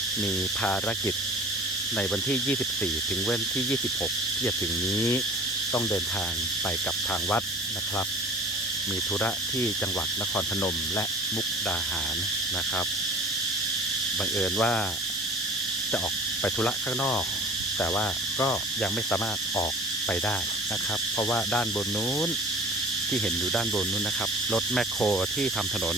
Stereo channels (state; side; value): normal; both; correlation 0.44